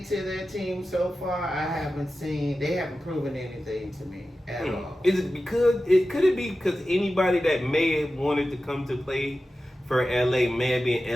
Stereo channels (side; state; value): both; normal; correlation 0.94